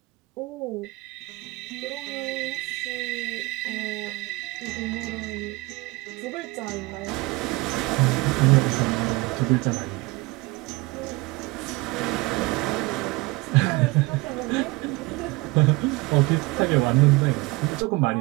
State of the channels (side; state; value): left; quieter; 23.1 dB